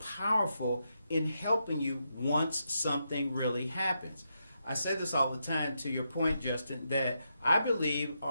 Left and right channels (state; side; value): inverted; both; correlation -0.83